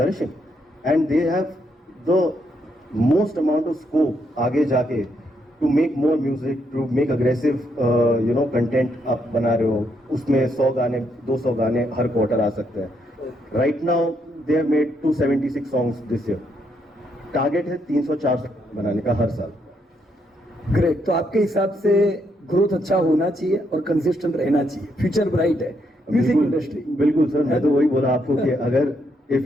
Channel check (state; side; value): normal; both; correlation 0.76